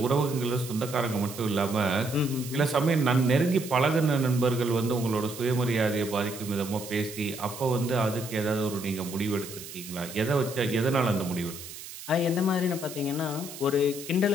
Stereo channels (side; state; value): right; noise; hiss, 13 dB below the sound